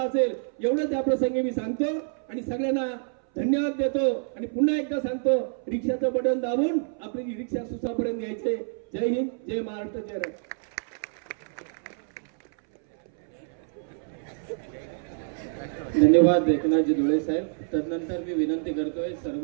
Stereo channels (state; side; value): silent; left; 60 dB below the other